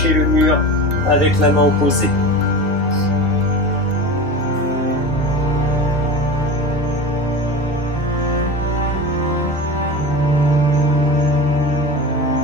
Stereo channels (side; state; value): both; normal; correlation 0.28